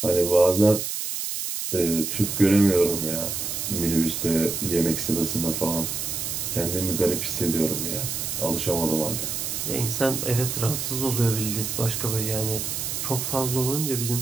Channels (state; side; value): noise; right; hiss, 3 dB below the sound